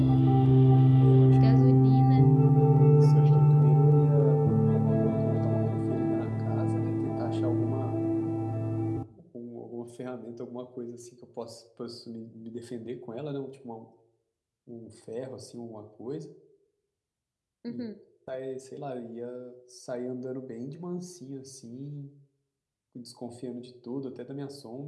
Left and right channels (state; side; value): identical; both; correlation 1.00